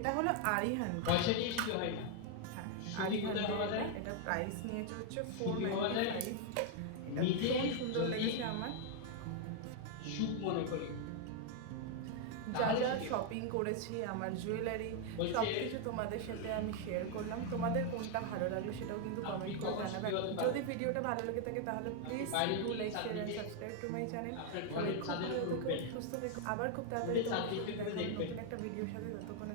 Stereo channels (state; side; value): different; both; correlation 0.00